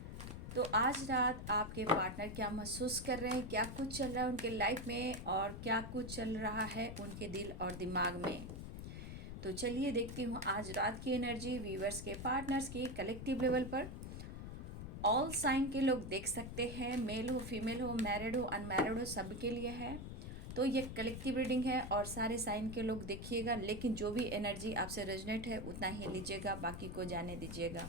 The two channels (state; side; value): noise; left; rumble, 8 dB below the sound